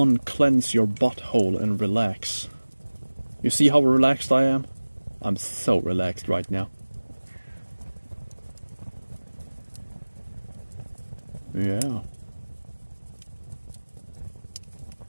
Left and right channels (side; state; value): both; inverted; correlation -1.00